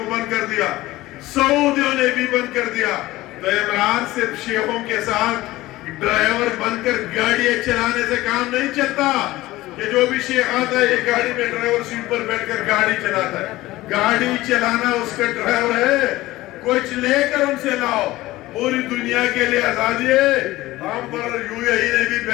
بند کر دیا سعودیوں نے بھی بند کر دیا تو عمران صرف شیخوں کے ساتھ ڈرائیور بن کر گاڑیاں چلانے سے کام نہیں چلتا کہ جو بھی شیخ آتا ہے یہ گاڑی میں ڈرائیور سیٹ پر بیٹھ کر گاڑی چلاتا ہے. گاڑی چلانا اس کا ڈرائیور ہے کچھ لے کر ان سے لاؤ. پوری دنیا کے لیے آزادی ہے. ہم پر یو اے ای نے بھی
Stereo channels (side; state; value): right; quieter; 17.7 dB